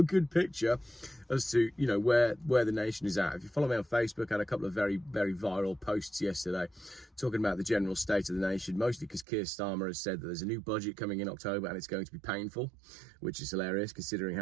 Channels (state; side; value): drops out; left; at 9.2 s